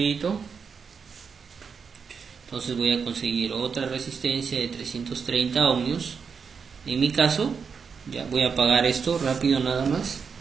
Entonces voy a conseguir otra resistencia de 330 ohmios. En mi caso, ya voy a apagar esto rápido nada más.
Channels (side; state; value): left; quieter; 6.0 dB